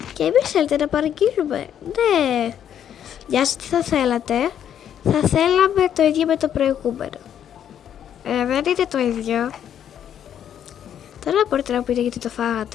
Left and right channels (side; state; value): right; quieter; 9.6 dB